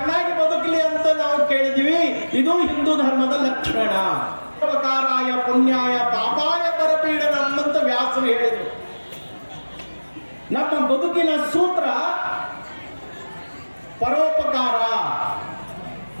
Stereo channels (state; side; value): inverted; both; correlation -1.00